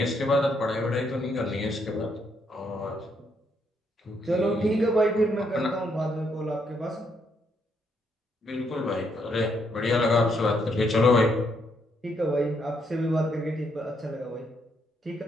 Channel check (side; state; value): both; normal; correlation 0.75